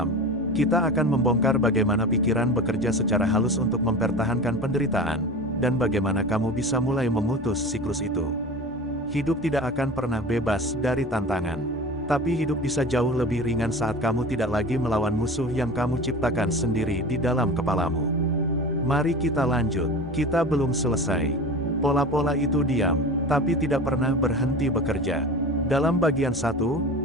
Kita akan membongkar bagaimana pikiran bekerja secara halus untuk mempertahankan penderitaan, dan bagaimana kamu bisa mulai memutus siklus itu. Hidup tidak akan pernah bebas dari tantangan. Tapi hidup bisa jauh lebih ringan saat kamu tidak lagi melawan musuh yang kamu ciptakan sendiri di dalam kepalamu. Mari kita lanjut, kita belum selesai. Pola-pola itu diam, tapi tidak pernah berhenti bekerja. Dalam bagian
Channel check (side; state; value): both; normal; correlation 0.33